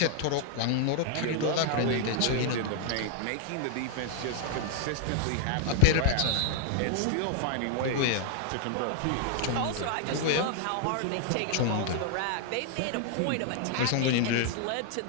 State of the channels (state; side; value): different; both; correlation 0.00